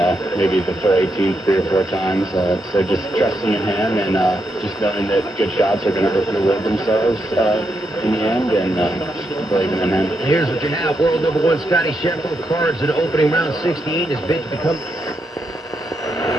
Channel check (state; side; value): normal; both; correlation 0.82